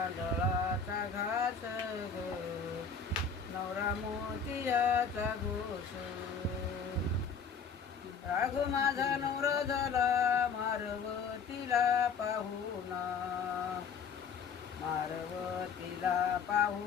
घास ग, नवरा मोतियाचा घोष. राघू माझा नवरा झाला मारवतीला पाहुणा, मारवतीला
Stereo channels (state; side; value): quieter; right; 5.8 dB